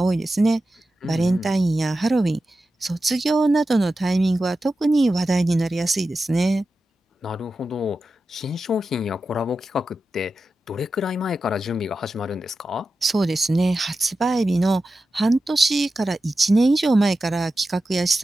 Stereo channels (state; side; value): normal; both; correlation 0.92